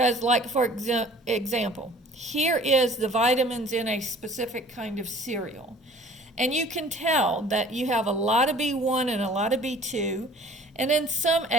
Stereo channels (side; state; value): both; normal; correlation 0.50